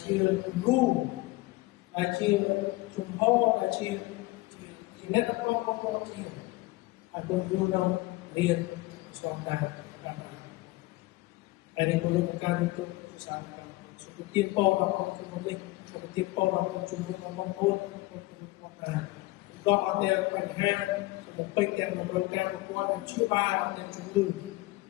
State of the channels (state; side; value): quieter; right; 20.9 dB